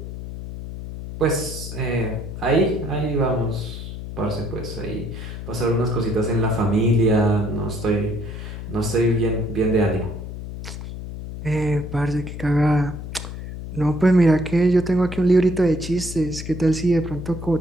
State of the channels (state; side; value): noise; left; hum, 9 dB below the sound